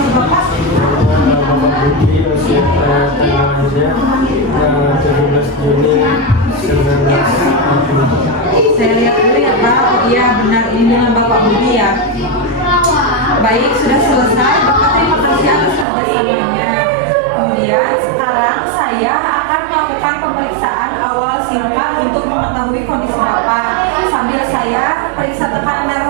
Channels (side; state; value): left; drops out; at 15.9 s